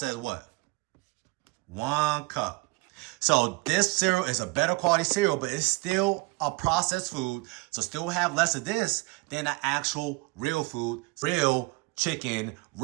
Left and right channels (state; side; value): quieter; left; 25.3 dB